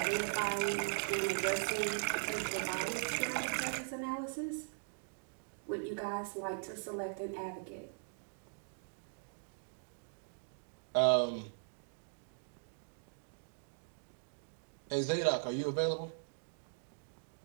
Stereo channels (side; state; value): left; silent; digital silence